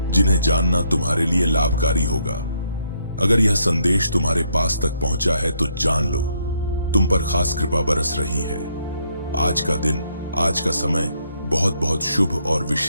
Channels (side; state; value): both; inverted; correlation -0.73